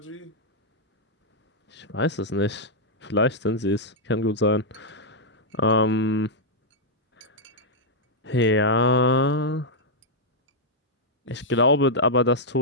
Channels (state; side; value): normal; both; correlation -0.06